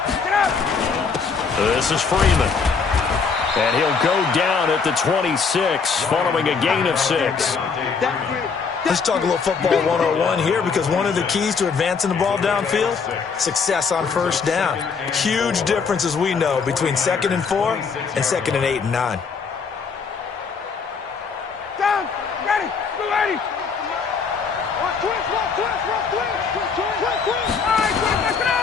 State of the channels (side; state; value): right; quieter; 5.4 dB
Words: Get up. This is Freeman. And he'll go down at the 26, following a gain of 6. Let's talk a little football 101 here, because one of the keys to advancing the ball downfield, success on 1st down. Huge difference, as we know, between 2nd and 4 and 2nd and 8 and 9. Down. Ready. Go, ready.